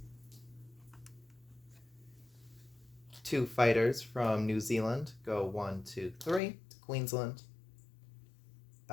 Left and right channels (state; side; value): drops out; right; at 6.4 s